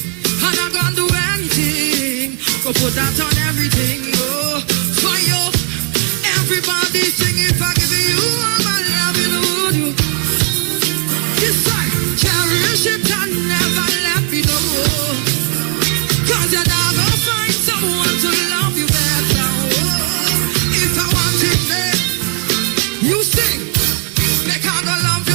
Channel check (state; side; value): quieter; left; 25.9 dB